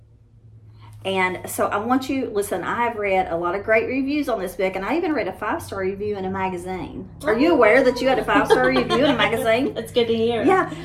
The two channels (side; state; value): both; identical; correlation 1.00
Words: And so I want you, listen, I have read a lot of great reviews on this book, and I even read a 5-star review in a magazine. Are you aware that you had a 5-star review in a magazine? That's good to hear. Yeah.